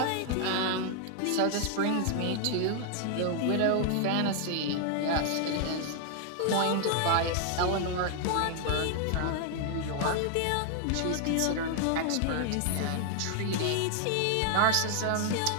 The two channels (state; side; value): different; both; correlation 0.00